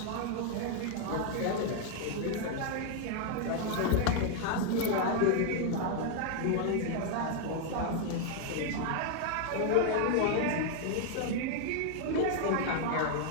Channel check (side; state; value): both; different; correlation 0.00